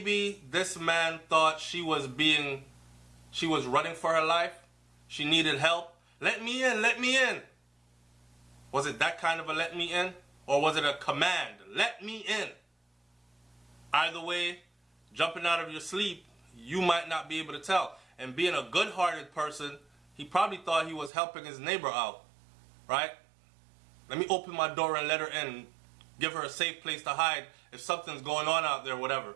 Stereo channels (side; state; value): left; drops out; at 21.1 s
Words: this man thought she was running for her life. She needed help. Let me in, let me in. Was it that kind of a let me in? Or was it a command? Let me in. Either way, jumping out of your sleep, you might not be able to tell. And being a good-hearted person, he probably thought he was helping his neighbor out, right? Let me open my door and let her in, give her a safe place to hide if something's going on out there, whatever.